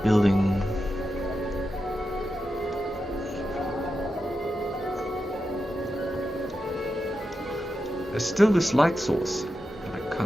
building. There's still this light source that I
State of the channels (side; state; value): both; normal; correlation 0.89